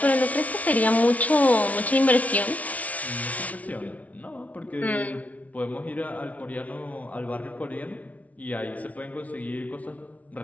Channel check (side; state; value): right; late; 0.069 ms